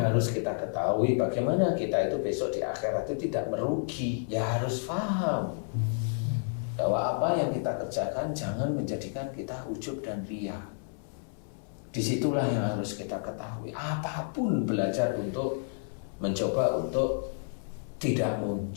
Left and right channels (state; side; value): silent; right; digital silence